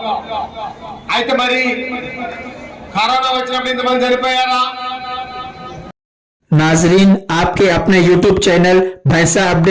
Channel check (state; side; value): identical; both; correlation 1.00